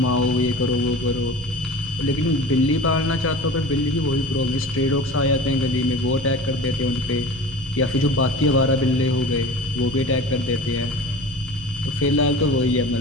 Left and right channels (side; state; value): both; normal; correlation 0.36